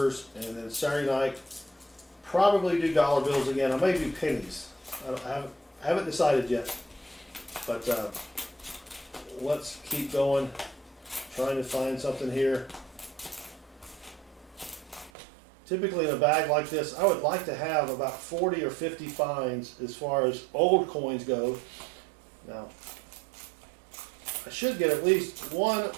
and then Saturday night probably do dollar bills again. I may do pennies. I haven't decided yet, but let's keep going, trying to find something here. Typically in a bag like this, I would like to have about 40 or 50 finds as far as old coins go. Now, I should get at least 1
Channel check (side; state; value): left; drops out; at 15.1 s